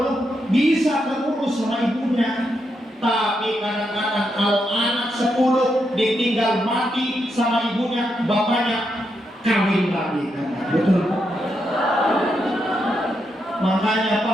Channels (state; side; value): normal; both; correlation 0.82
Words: bisa keurus sama ibunya. Tapi kadang-kadang kalau anak 10 ditinggal mati sama ibunya, bapaknya kawin lagi. Betul Pak? Makanya